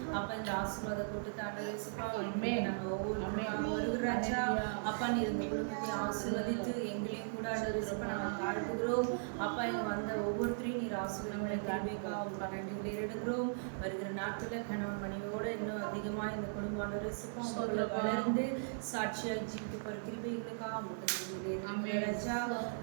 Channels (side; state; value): left; silent; digital silence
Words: அப்பா இந்த ஆசீர்வாத கூட்டத்தை ஆண்டவரேசப்பா நாங்கள் ஒவ்வொரு ராஜா அப்பா நீர் இந்த குடும்பத்தை ஆசீர்வதித்து எங்களையும் கூட ஆண்டவரேசப்பா நாங்கள் தாழ்த்துகிறோம். அப்பா இங்க வந்த ஒவ்வொருத்தரையும் நீர் ஆசீர்வாதங்களுக்காக உங்களுக்கு நன்றி எடுக்கிறோம். வருகிற நாட்களில் கணவன் மனைவியோடு இன்னும் அதிகமாக இந்த குடும்ப ஆண்டவரேசப்பா வளர்ந்து சாட்சியாக ஜீவிக்க போகிற கிருபிகளுக்காக உங்களுக்கு நன்றி ராஜா.